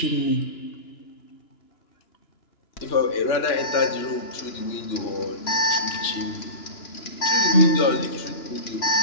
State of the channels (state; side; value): late; right; 2.9 ms